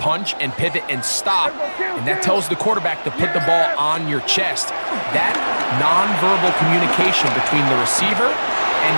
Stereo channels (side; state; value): both; inverted; correlation -1.00